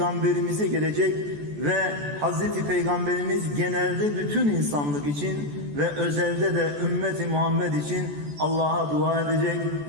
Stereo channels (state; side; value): late; left; 14 ms